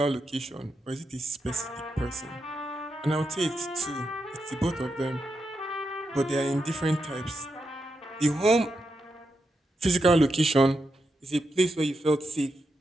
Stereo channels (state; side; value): normal; both; correlation 0.85